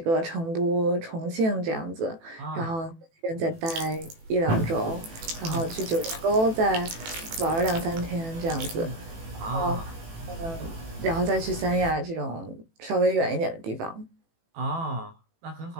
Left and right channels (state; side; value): late; left; 18 ms